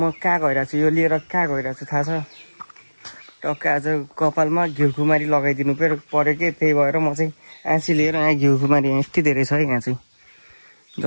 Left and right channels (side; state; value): both; inverted; correlation -1.00